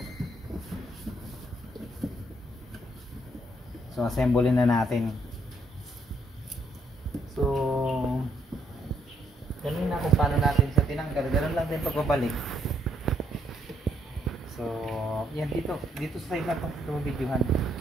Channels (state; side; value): normal; both; correlation 0.73